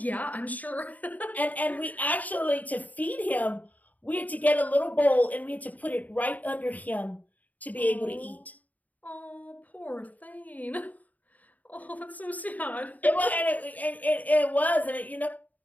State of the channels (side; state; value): right; late; 0.076 ms